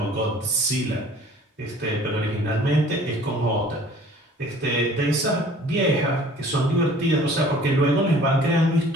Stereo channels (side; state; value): both; normal; correlation 0.50